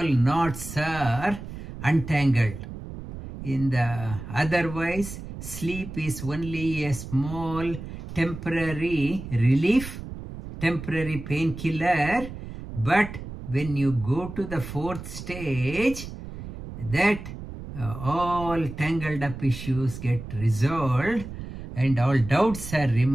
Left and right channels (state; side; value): noise; right; rumble, 11 dB below the sound